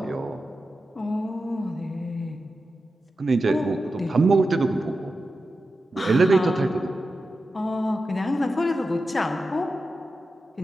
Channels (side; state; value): both; normal; correlation 0.91